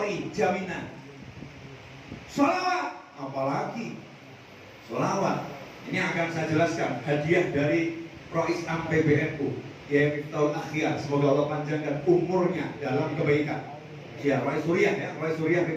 jaminan. Sholawat, apalagi sholawat. Ini akan saya jelaskan hadiah dari Rois Am PBNU, ya Miftahul Akhyar. Semoga Allah panjangkan umurnya dalam kebaikan. Ya, Rois Suriah ya, Rois Suriah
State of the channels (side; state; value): both; identical; correlation 1.00